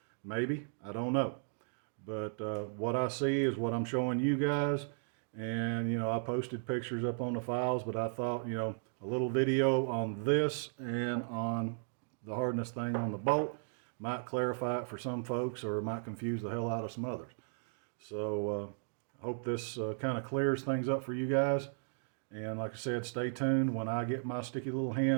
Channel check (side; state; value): left; silent; digital silence